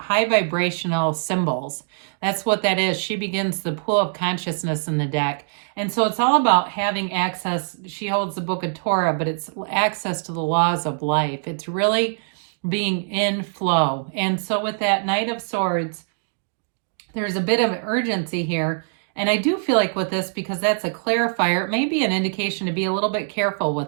vibrational symbols. That's what that is. She begins the pool of consciousness in the deck. And so it's all about having access. She holds the book of Torah, but it's access to the laws of life. It's really being in flow. And so with that Knight of Swords, there's a bit of urgency here. And I do feel like with this, because that's a clarifier, it may be an indication to be a little bit careful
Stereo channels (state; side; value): silent; left; digital silence